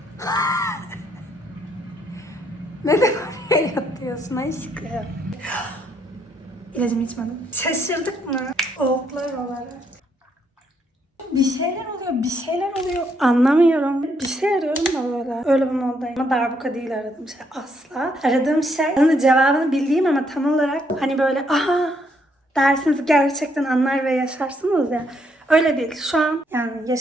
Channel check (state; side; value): normal; both; correlation 0.73